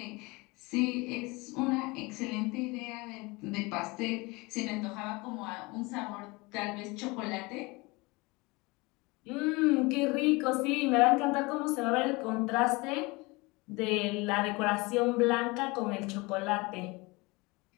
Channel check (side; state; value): right; quieter; 24.8 dB